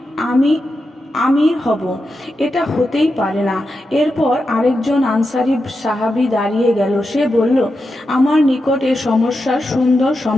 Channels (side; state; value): both; normal; correlation 0.88